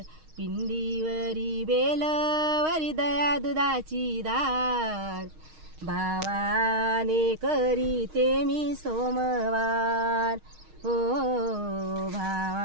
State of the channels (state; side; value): late; left; 6.4 ms